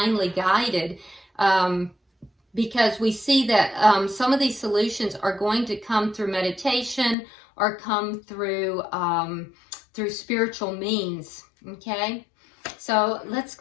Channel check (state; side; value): drops out; right; at 7.2 s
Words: guided. Because we see that some of these solutions are going to come through meditation or come through spiritual means. Okay, so let's